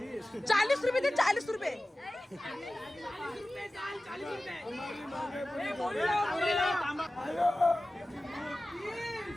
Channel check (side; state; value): both; normal; correlation 0.96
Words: 40 रुपये दे 40 रुपये